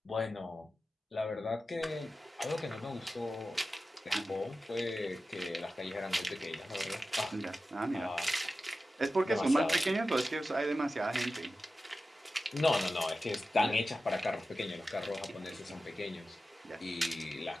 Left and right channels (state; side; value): normal; both; correlation 0.93